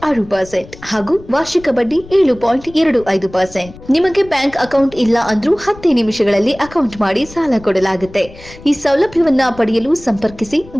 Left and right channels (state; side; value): noise; left; rumble, 19 dB below the sound